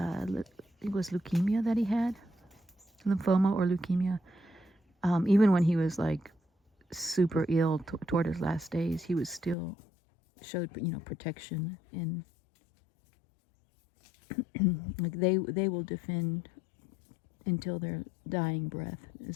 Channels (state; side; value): drops out; right; at 9.6 s